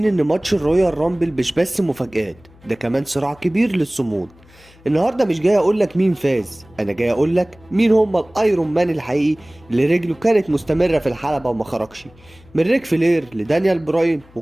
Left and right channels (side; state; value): left; noise; hum, 26 dB below the sound